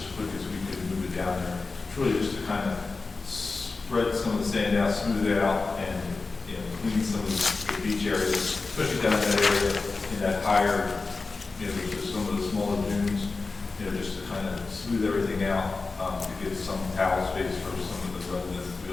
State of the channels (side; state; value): right; quieter; 3.9 dB